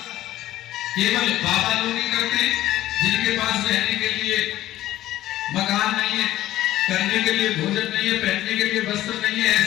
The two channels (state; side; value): quieter; right; 14.5 dB